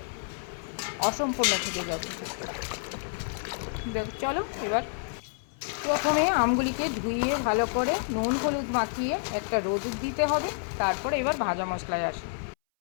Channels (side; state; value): right; silent; 59 dB below the other